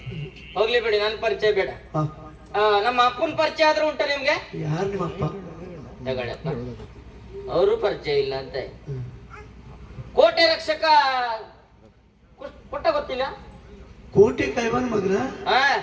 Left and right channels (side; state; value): both; identical; correlation 1.00